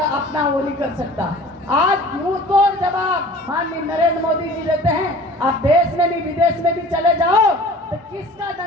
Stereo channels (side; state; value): both; normal; correlation 0.44